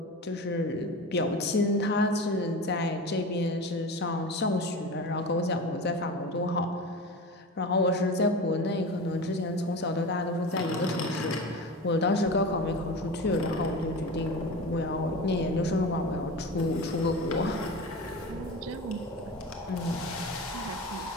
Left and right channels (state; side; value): normal; both; correlation 0.30